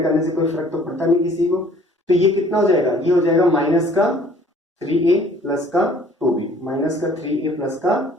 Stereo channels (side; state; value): both; normal; correlation 0.55